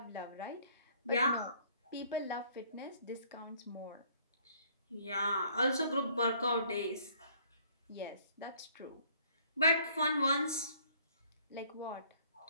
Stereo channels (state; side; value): inverted; both; correlation -0.60